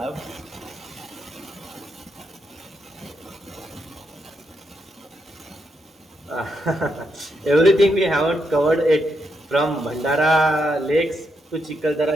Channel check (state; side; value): normal; both; correlation 0.81